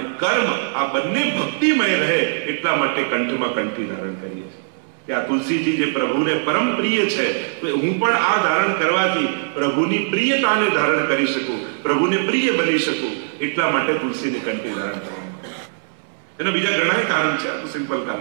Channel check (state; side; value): silent; left; 64 dB below the other